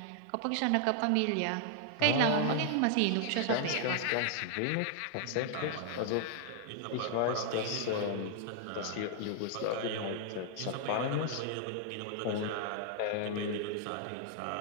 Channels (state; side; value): different; both; correlation 0.00